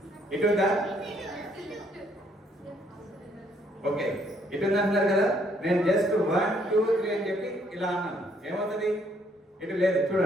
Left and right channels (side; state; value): both; normal; correlation 0.68